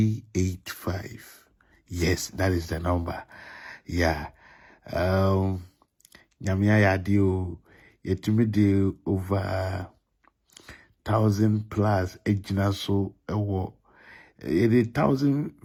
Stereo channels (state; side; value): identical; both; correlation 1.00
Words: Yes, that is the number. Yeah. Nyamia yadio yetumi de over 1,000 plus ejina so ewo. It